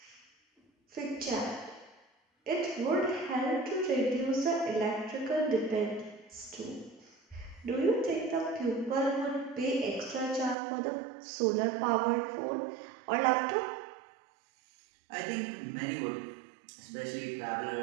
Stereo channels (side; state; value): left; drops out; at 10.6 s